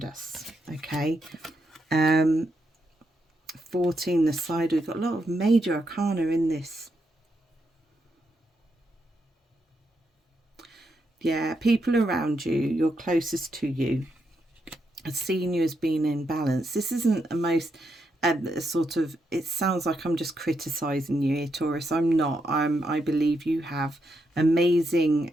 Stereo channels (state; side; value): normal; both; correlation 0.81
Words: us. Okay. 14, the side, we've got a lot of major arcana in this. Yeah, people around you, you're closest to you, are seeing you as being in balance. This isn't a most sort of, it sounds like I'm just criticizing you here, Taurus. I'm not. I believe you have amazing